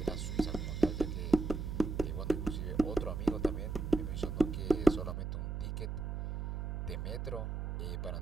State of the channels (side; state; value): right; noise; hum, 3 dB below the sound